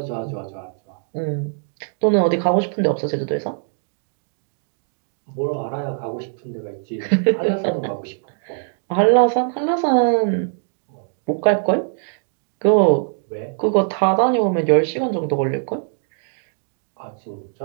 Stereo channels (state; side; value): silent; left; digital silence